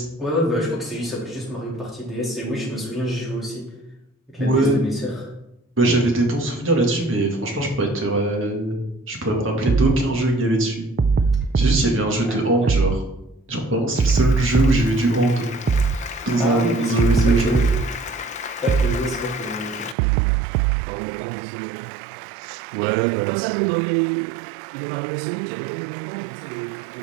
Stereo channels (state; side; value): drops out; left; at 20.0 s